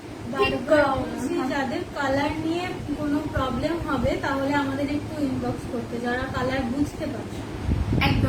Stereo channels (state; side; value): identical; both; correlation 1.00